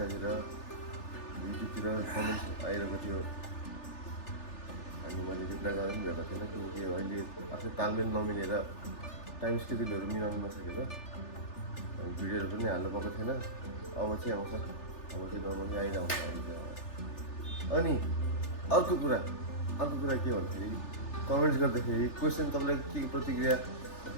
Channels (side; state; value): right; late; 3.4 ms